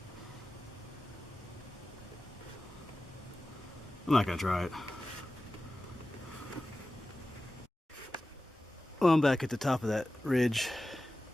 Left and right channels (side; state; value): both; normal; correlation 0.95